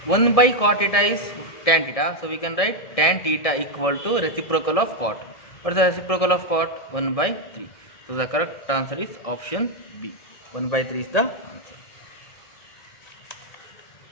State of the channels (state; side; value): late; right; 1.7 ms